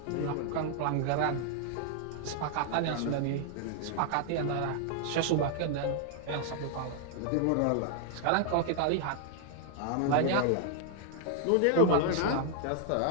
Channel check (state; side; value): different; both; correlation 0.00